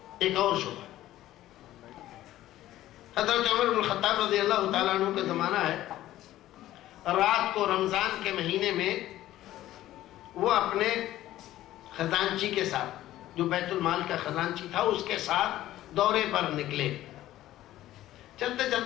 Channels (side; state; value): right; quieter; 14.3 dB